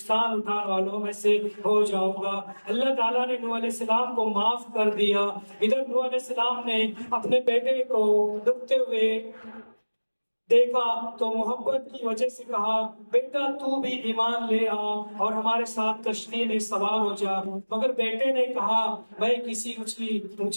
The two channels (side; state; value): both; inverted; correlation -1.00